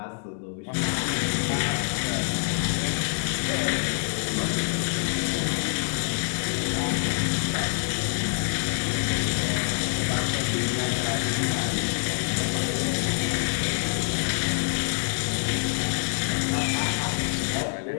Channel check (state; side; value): silent; right; 61 dB below the other